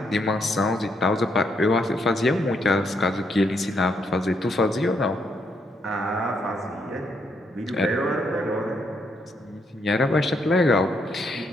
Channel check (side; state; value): both; normal; correlation 0.76